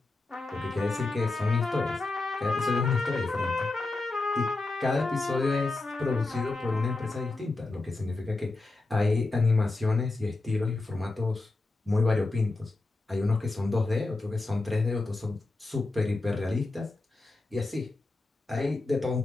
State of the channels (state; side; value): quieter; right; 3.2 dB